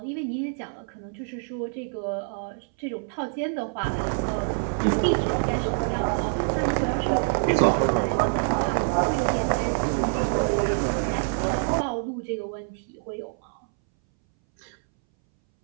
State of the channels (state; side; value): silent; left; 61 dB below the other